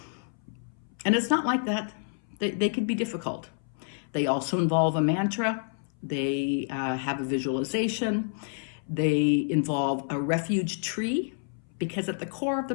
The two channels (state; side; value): silent; right; 58 dB below the other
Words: And it's not like that. They could be difficult. They also involve a mantra. They have a visualization. They involve a refuge tree, because at the core of the